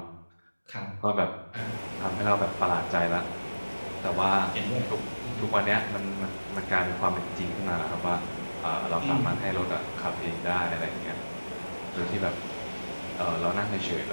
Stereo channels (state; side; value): inverted; both; correlation -1.00